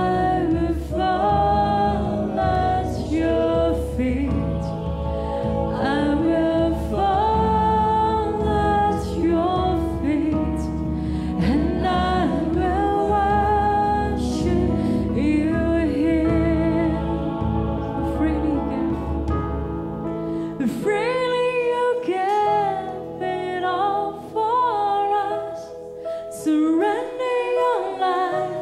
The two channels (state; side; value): identical; both; correlation 1.00